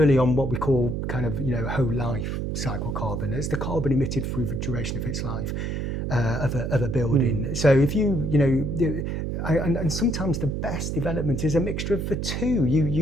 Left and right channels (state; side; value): noise; right; hum, 2 dB below the sound